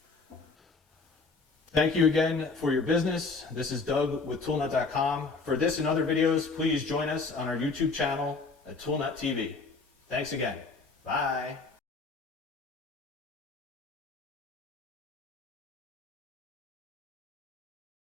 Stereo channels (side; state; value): right; quieter; 4.1 dB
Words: Thank you again for your business. This is Doug with ToolNut.com. For this and other videos, please join us on our YouTube channel at ToolNut TV. Thanks again. Bye.